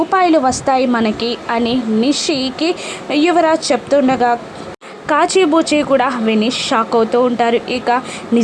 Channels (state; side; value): identical; both; correlation 1.00